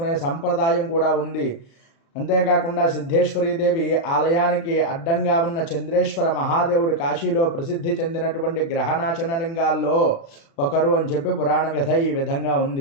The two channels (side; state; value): right; late; 36 ms